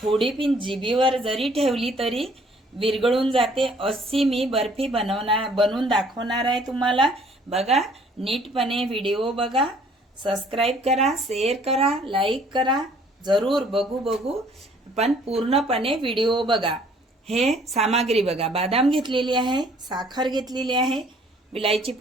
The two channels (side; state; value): both; normal; correlation 0.59